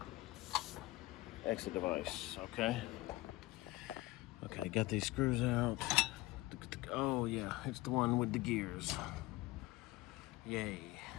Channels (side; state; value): right; quieter; 19.3 dB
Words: exit device, okay? Okay, got these screws out. Oh yeah, it's the one with the gears. Yay.